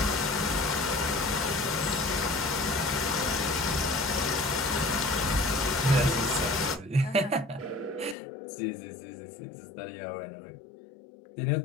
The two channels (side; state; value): right; drops out; at 8.2 s